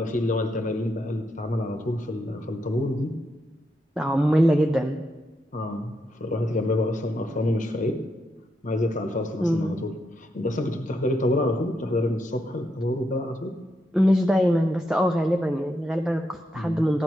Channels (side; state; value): both; normal; correlation 0.82